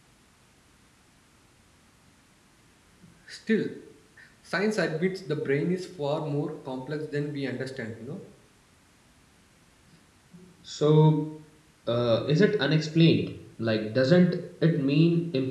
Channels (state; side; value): identical; both; correlation 1.00